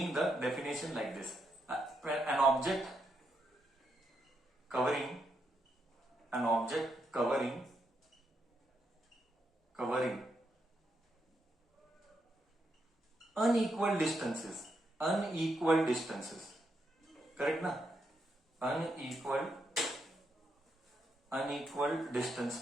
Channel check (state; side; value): normal; both; correlation 0.80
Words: the definition like this. An object covering unequal distances, correct na? Unequal